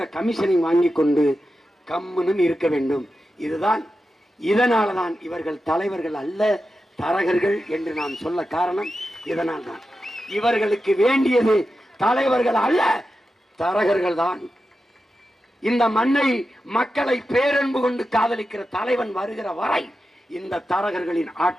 கமிஷனை வாங்கி கொண்டு கம்முன்னு இருக்க வேண்டும். இதுதான். இதனால்தான் இவர்கள் தலைவர்கள் அல்ல, தரகர்கள் என்று நான் சொல்ல காரணம் இதனால் தான். இவர்களுக்கு வேண்டியது தலைவர்கள் அல்ல, தரகர்கள் தான். இந்த மண்ணை, மக்களை பேரன்பு கொண்டு காதலிக்கிற தலைவன் வருகிற வரை இந்த தரகர்களின்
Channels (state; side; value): normal; both; correlation 0.91